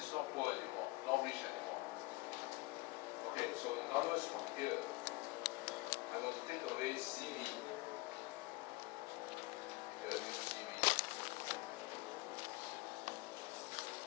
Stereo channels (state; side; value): quieter; right; 22.5 dB